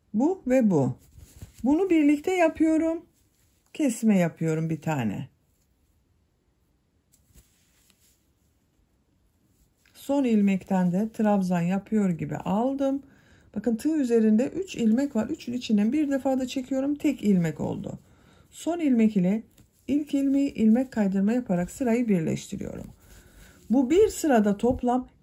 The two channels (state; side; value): identical; both; correlation 1.00